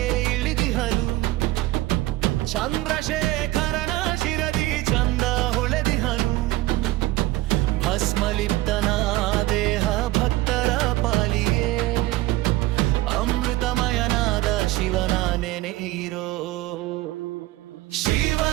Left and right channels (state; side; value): quieter; left; 17.7 dB